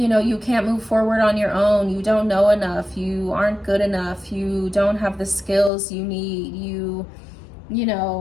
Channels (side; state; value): right; drops out; at 5.7 s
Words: know, you can't move forward on your own. You don't know enough. You aren't good enough. You don't have the skills you need. You